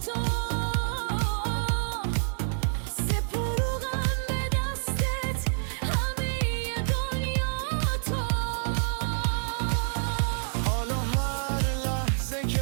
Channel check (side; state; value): left; silent; digital silence